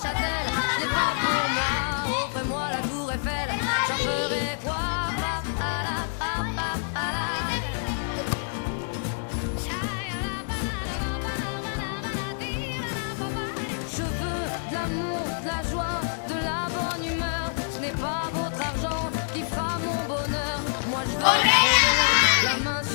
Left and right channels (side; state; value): right; silent; digital silence